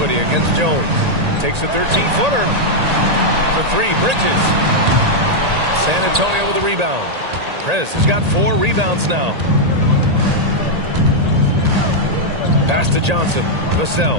against Jones. Takes a 13-footer. For 3, Bridges. San Antonio with a rebound. Prez has got 4 rebounds now. Pass to Johnson.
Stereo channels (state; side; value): late; left; 1.8 ms